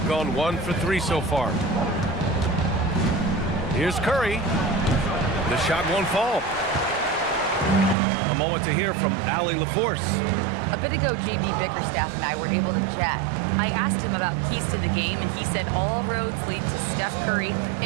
gone 1 for 3 so far. Here's Curry. The shot won't fall. A moment to hear from Allie LaForce. A bit ago, JB Bickerstaff and I were able to chat. I asked him about keys to the game, and he said all roads lead to Steph Curry,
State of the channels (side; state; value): left; drops out; at 8.0 s